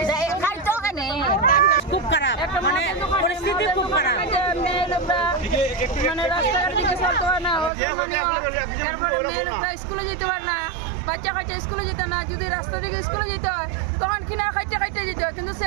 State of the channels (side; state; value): left; drops out; at 7.7 s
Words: খুব খারাপ মানে পরিস্থিতি খুব খারাপ মানে রাস্তাঘাট দিকে চলতে পারে না তারপরে মেয়ে লোকরা স্কুলে যেতে পারে না বাচ্চা কাচ্চা স্কুলে যেতে না যদি রাস্তা দিকে স্কুলে যেতে হয় তখন কিনা খাইতে যেতে হয় কিন্তু